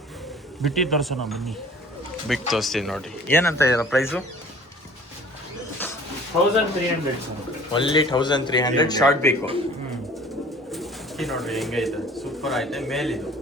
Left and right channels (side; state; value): both; normal; correlation 0.49